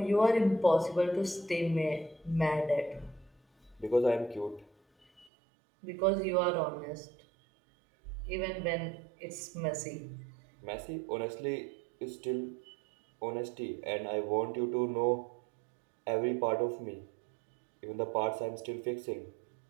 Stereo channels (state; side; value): drops out; left; at 5.2 s